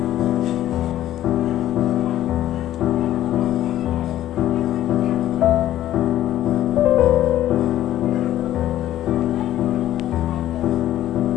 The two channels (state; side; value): quieter; right; 13.0 dB